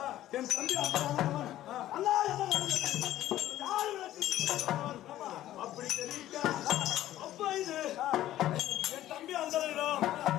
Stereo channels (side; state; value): right; quieter; 13.7 dB